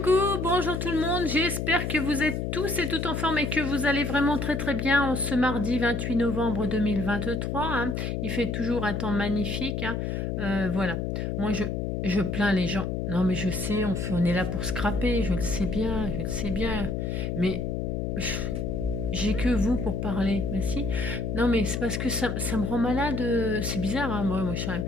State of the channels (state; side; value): noise; left; hum, 1 dB below the sound